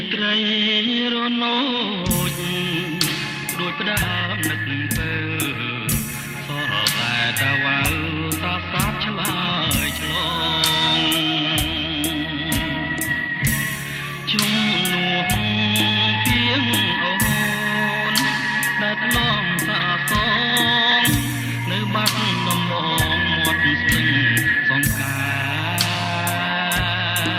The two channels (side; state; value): both; identical; correlation 1.00